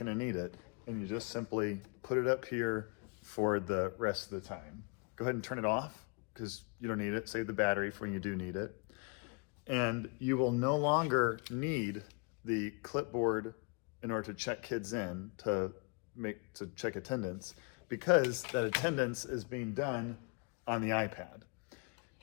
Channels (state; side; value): quieter; right; 34.2 dB